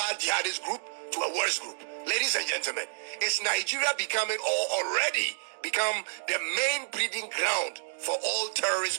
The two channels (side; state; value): left; silent; digital silence